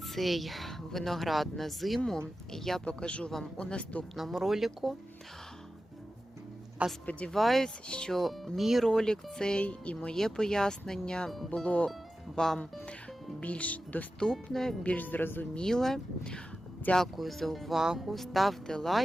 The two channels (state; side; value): normal; both; correlation 0.93